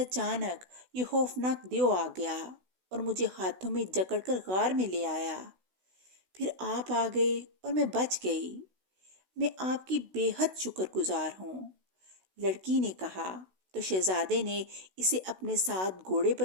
یہ خوفناک دیو آ گیا اور مجھے ہاتھوں میں جکڑ کر غار میں لے آیا۔ پھر آپ آ گئے اور میں بچ گئی۔ میں آپ کی بے حد شکر گزار ہوں، لڑکی نے کہا، تو شہزادے نے اسے اپنے ساتھ گھوڑے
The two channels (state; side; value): late; left; 16 ms